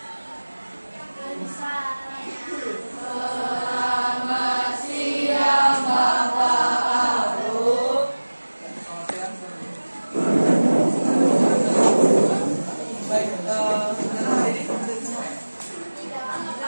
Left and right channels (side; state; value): both; inverted; correlation -1.00